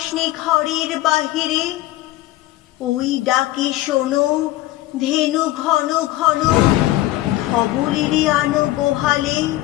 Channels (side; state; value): right; quieter; 16.2 dB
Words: ঘরের বাহিরে, ওই ডাকে শোনো ধেনু ঘন ঘন, ধবলেরে আনো গোহালে।